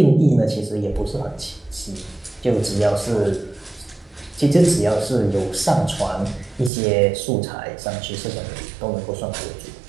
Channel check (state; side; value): drops out; left; at 6.7 s